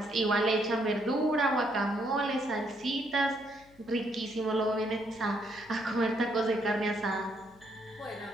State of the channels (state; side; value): noise; left; hum, 27 dB below the sound